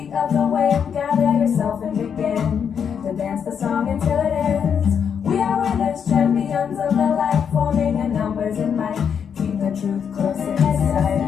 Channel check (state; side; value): quieter; right; 7.4 dB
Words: of the wind. Gather yourself and begin to dance the song until it ends. We are winners, champions of the light, forming in numbers and might. Keep the truth close in sight.